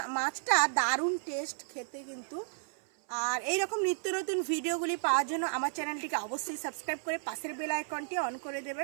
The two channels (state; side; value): silent; left; 56 dB below the other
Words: মাছটা দারুণ টেস্ট খেতে কিন্তু। আর এই রকম নিত্য নতুন ভিডিওগুলি পাওয়ার জন্য আমার চ্যানেলটিকে অবশ্যই সাবস্ক্রাইব করে পাশের বেল আইকনটি অন করে